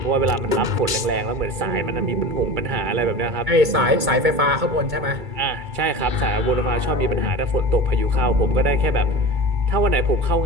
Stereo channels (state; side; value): late; left; 2.3 ms